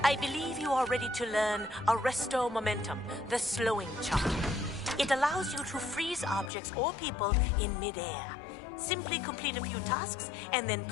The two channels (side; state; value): right; drops out; at 6.5 s